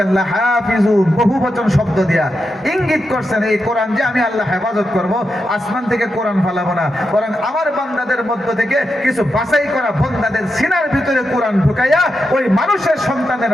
লাহাফিজুন, বহু বচন শব্দ দিয়া ইঙ্গিত করছেন এই কোরআন যে আমি আল্লাহ হেফাজত করব, আসমান থেকে কোরআন ফালাবো না, বরং আমার বান্দাদের মধ্য থেকে কিছু বাছাই করা বান্দাদের সিনার ভিতরে কোরআন ঢুকাইয়া ওই মানুষের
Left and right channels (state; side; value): normal; both; correlation 0.87